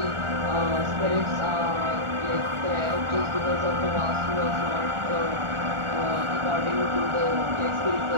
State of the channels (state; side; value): late; left; 1.4 ms